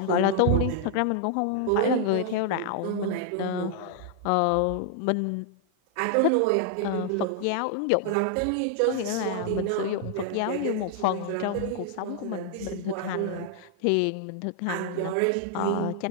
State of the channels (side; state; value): both; different; correlation 0.00